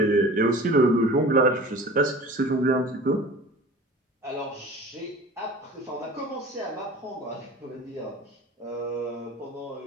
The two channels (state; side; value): normal; both; correlation 0.40